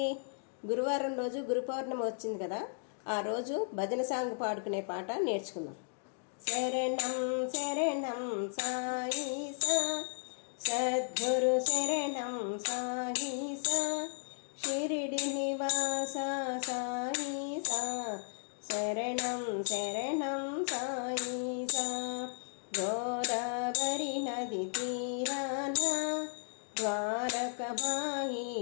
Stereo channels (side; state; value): right; silent; digital silence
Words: గురువారం రోజు గురు పౌర్ణమి వచ్చింది కదా, ఆ రోజు భజన సాంగ్ పాడుకునే పాట నేర్చుకుందాం. శరణం శరణం సాయి సా, సద్గురు శరణం సాయి సా, షిరిడి నివాస సాయి సా, శరణం శరణం సాయి సా. గోదావరి నది తీరాన ద్వారకమాయి